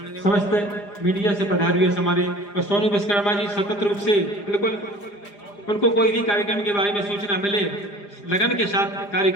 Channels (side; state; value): right; late; 4.9 ms